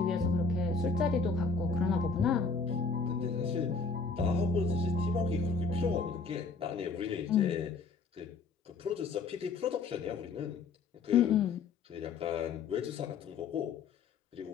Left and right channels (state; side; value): quieter; right; 4.7 dB